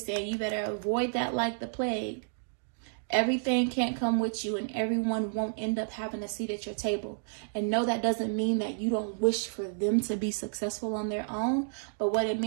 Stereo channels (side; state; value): left; silent; digital silence